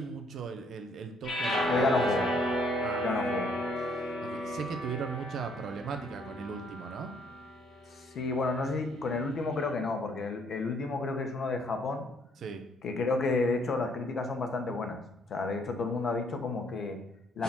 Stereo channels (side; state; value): both; normal; correlation 0.66